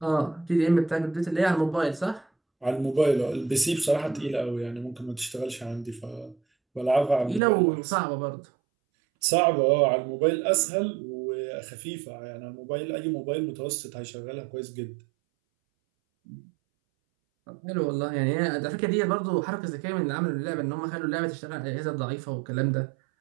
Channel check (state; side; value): drops out; left; at 7.4 s